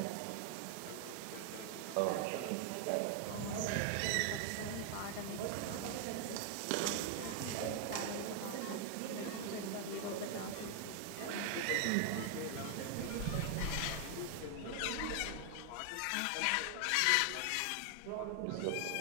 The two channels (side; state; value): both; different; correlation 0.00